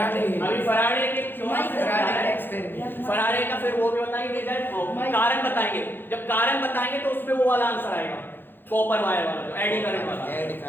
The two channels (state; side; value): late; right; 0.099 ms